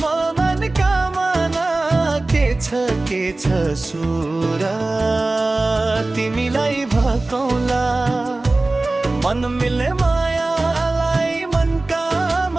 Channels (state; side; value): quieter; left; 3.0 dB